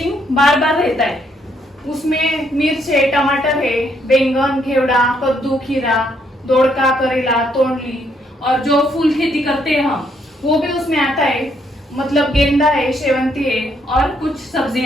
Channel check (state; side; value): normal; both; correlation 0.72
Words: बार बार रहता है। उसमें मिर्च है, टमाटर है, बैंगन, घेवड़ा, कद्दू, खीरा, दोड़का, करेला, तोंडली, और जो फूल खेती करते हैं हम वो भी उसमें आता है, मतलब गेंदा है, शेवंती है और कुछ